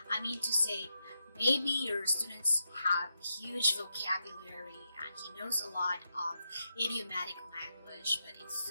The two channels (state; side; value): inverted; both; correlation -0.85